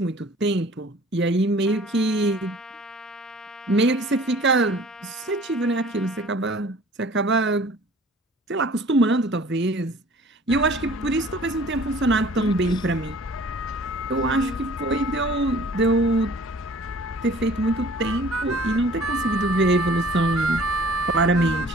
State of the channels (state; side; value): normal; both; correlation 0.50